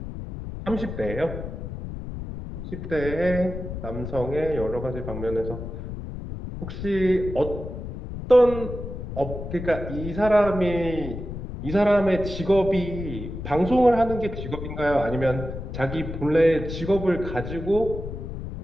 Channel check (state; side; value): noise; left; rumble, 8 dB below the sound